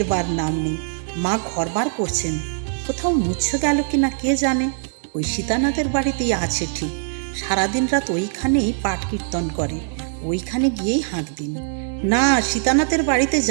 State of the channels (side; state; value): left; silent; digital silence